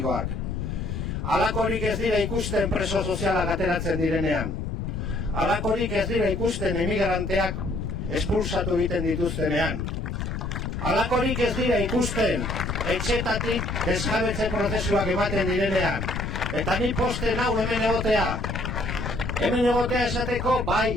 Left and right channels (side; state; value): left; noise; rumble, 3 dB below the sound